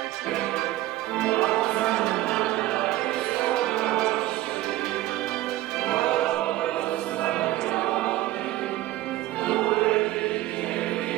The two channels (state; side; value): quieter; left; 15.8 dB